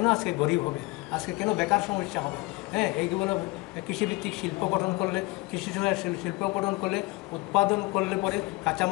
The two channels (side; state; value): right; quieter; 23.1 dB